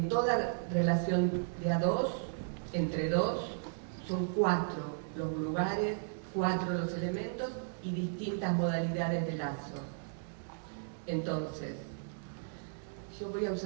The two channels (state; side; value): silent; left; digital silence